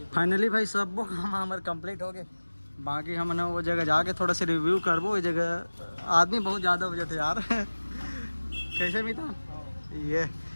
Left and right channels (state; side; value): inverted; both; correlation -1.00